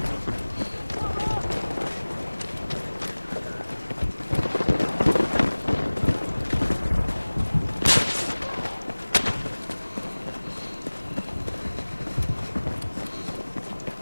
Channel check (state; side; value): inverted; both; correlation -1.00